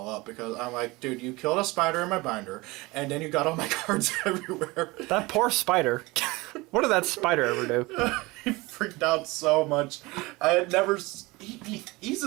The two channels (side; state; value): left; quieter; 22.6 dB